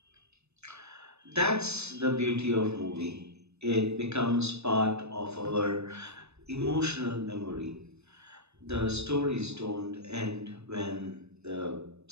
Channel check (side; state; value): left; late; 0.80 ms